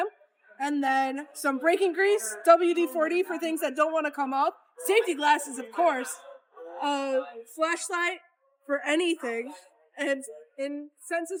And then some braking grease, WD-40 for things that don't want to come off. Safety glasses, of course. A flashlight for anything. And in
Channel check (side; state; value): both; identical; correlation 1.00